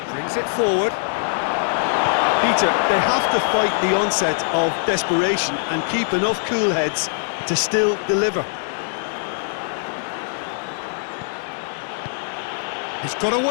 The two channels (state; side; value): silent; right; digital silence